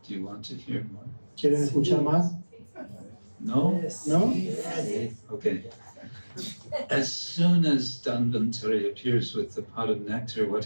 Do you want to hear more? ¿Quieren escuchar más? No? ¿No? Okay. As soon as Dhanvantari appears with the pot of nectar, what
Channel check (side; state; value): both; inverted; correlation -1.00